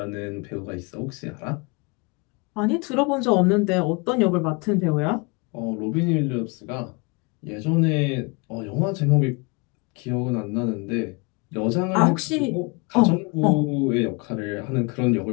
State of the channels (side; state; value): right; quieter; 29.3 dB